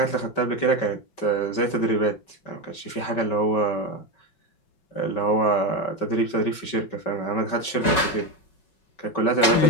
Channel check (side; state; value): right; late; 5.4 ms